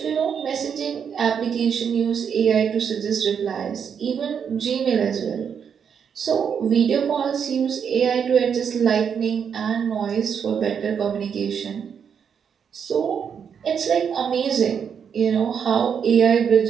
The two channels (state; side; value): quieter; left; 7.3 dB